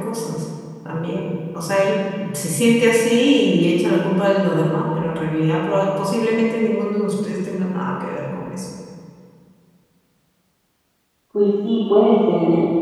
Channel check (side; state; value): both; identical; correlation 1.00